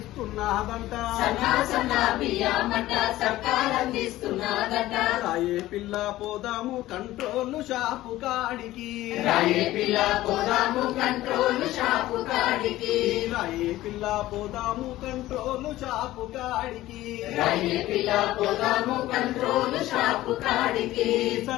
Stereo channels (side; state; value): right; quieter; 15.9 dB